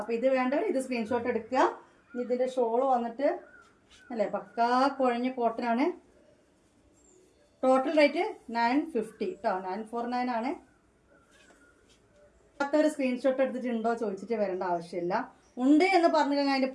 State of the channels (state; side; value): identical; both; correlation 1.00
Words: ഇത് വേണ്ടവർ ഇത് സ്ക്രീൻഷോട്ട് എടുക്കുക. ഇതിൻ്റെ ഷോള് വന്നിട്ട് അല്ലേ പക്കാ കുഴഞ്ഞ കോട്ടനാണ്. ടോട്ടൽ റേറ്റ് 950 കേട്ടോ. 949 ആണ്. ഒരു സ്ക്രീൻഷോട്ട് എടുത്തിട്ടുണ്ടോ ചോദിച്ചിട്ട് വരേണ്ട ആവശ്യമില്ല. ഉണ്ട് എന്ന് പറഞ്ഞു കഴിഞ്ഞാൽ അതിൻ്റെ